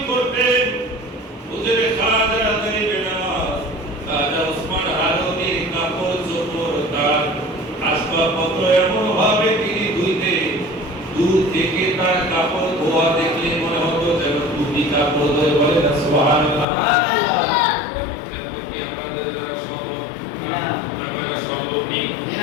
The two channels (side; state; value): right; drops out; at 16.7 s